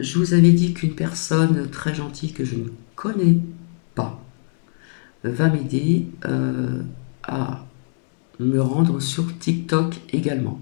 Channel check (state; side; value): silent; right; digital silence